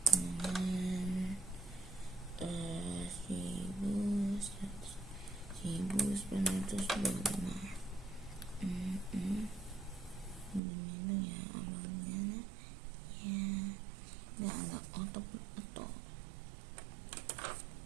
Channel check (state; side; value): drops out; left; at 10.6 s